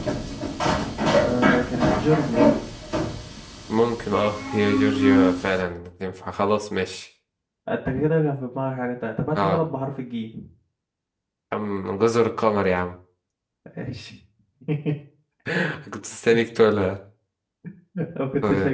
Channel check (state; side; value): identical; both; correlation 1.00